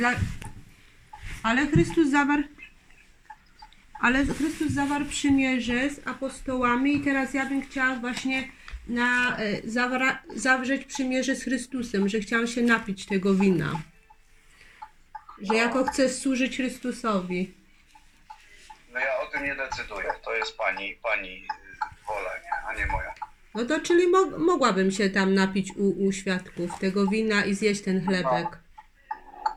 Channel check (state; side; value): identical; both; correlation 1.00